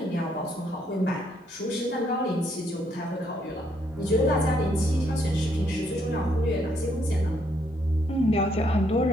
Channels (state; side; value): normal; both; correlation 0.72